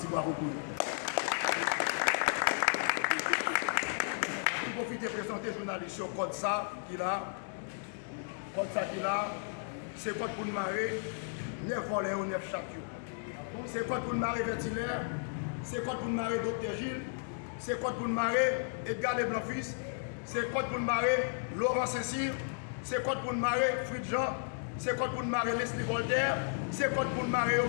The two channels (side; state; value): right; silent; digital silence